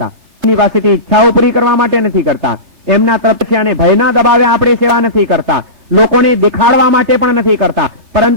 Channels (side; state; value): left; late; 3.3 ms